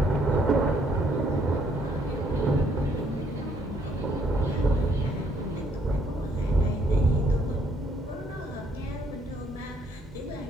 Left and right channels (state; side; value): normal; both; correlation 0.68